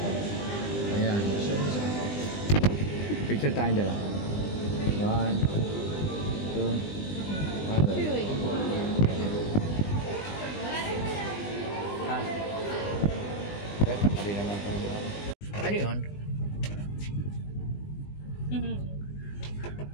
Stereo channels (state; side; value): late; right; 20 ms